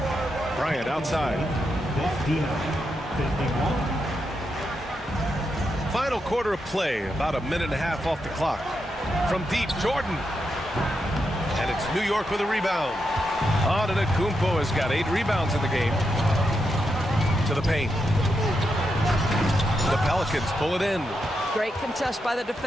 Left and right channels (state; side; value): normal; both; correlation 0.84